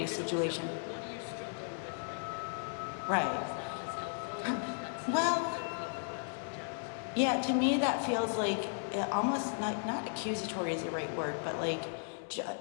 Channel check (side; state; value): right; silent; digital silence